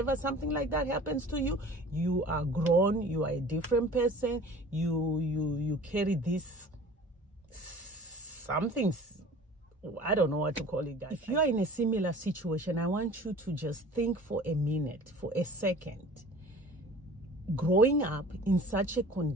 something like that happens to you, you are grown, you are a different person. You carry this something, I don't know what to call it, guys. If you are in a similar situation, I want you to just think for a minute, for a second. Growing up in such a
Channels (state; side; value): normal; both; correlation 0.44